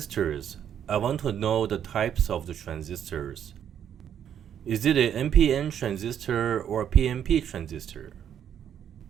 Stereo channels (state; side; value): quieter; left; 9.3 dB